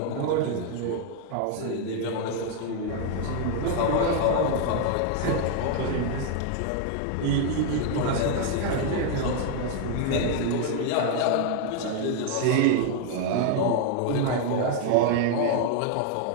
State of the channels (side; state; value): both; different; correlation 0.00